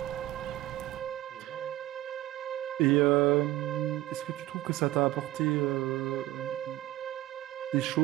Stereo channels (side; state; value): left; quieter; 16.1 dB